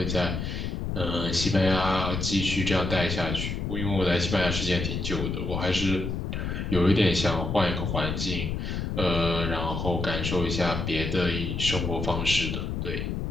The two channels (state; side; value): noise; left; rumble, 3 dB below the sound